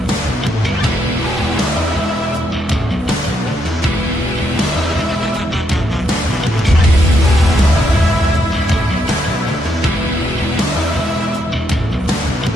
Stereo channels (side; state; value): both; normal; correlation 0.77